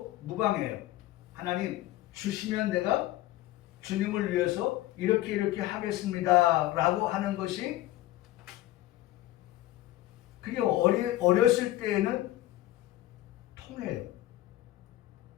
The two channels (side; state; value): right; quieter; 15.6 dB